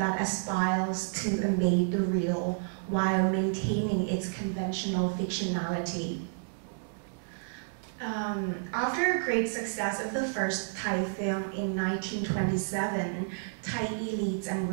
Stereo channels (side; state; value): left; silent; digital silence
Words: aspires to embed the real while maintaining its conventional fictionality. After a great success of the first Thai film in 1927, Thai elites and